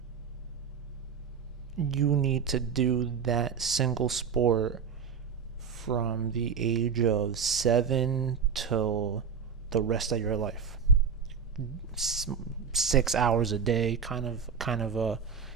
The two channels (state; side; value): quieter; left; 6.6 dB